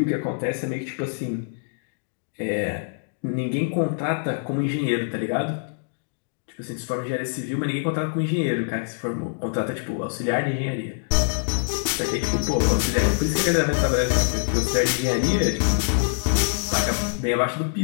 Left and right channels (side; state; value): right; silent; digital silence